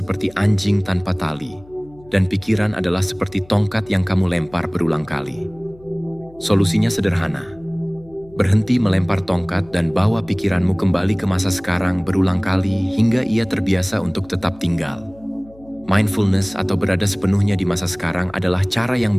anjing tanpa tali, dan pikiran adalah seperti tongkat yang kamu lempar berulang kali. Solusinya sederhana. Berhenti melempar tongkat dan bawa pikiranmu kembali ke masa sekarang berulang kali hingga ia terbiasa untuk tetap tinggal. Mindfulness atau berada sepenuhnya di masa sekarang adalah cara yang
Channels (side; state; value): left; noise; hum, 25 dB below the sound